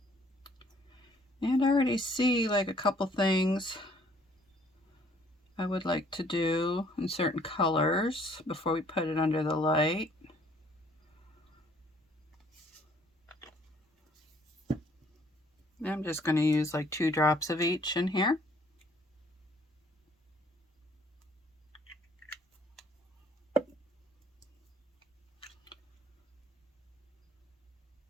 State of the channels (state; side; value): normal; both; correlation 0.61